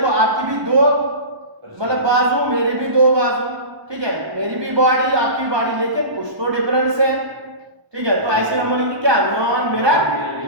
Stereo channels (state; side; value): late; left; 1.0 ms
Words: आपकी भी दो मतलब बाजू, मेरी भी दो बाजू, ठीक है, मेरी भी बॉडी आपकी बॉडी, लेकिन कुछ तो डिफरेंस है। ठीक है, तो ऐसे हम बोलेंगे क्या, नॉन मिरर